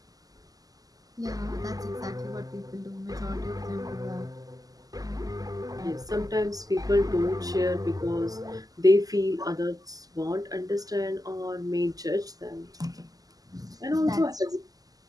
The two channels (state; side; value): late; left; 0.17 ms